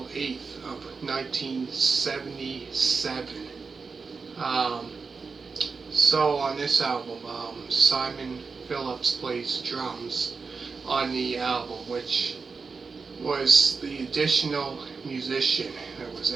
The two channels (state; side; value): quieter; left; 4.8 dB